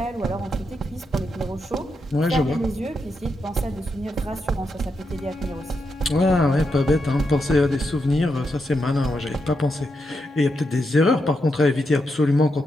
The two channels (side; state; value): both; normal; correlation 0.84